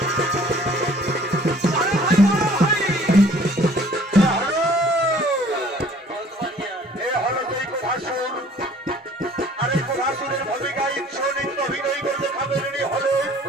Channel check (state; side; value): normal; both; correlation 0.54